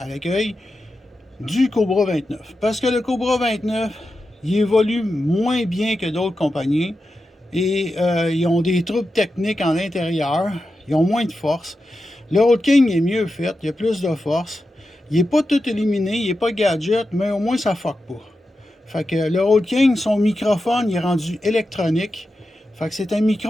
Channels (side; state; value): both; normal; correlation 0.90